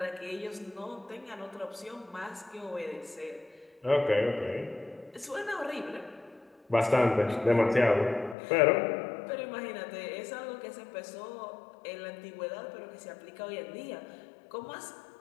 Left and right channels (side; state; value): right; drops out; at 8.3 s